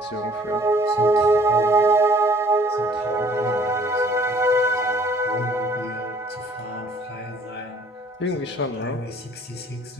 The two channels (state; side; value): normal; both; correlation 0.57